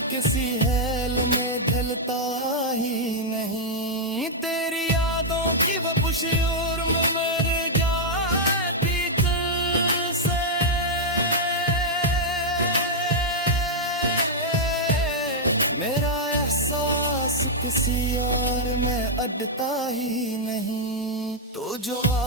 किसी हेल में ढलता ही नहीं। तेरी यादों की वो पुशूर में मर जाती तुझसे, मेरा एहसास किसी और में अटता ही नहीं। तो जो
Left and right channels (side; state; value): both; normal; correlation -0.05